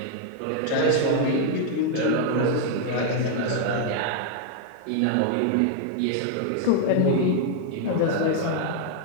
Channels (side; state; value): both; different; correlation 0.00